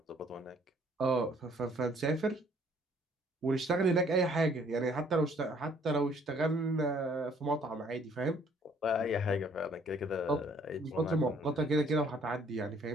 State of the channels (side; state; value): both; normal; correlation 0.61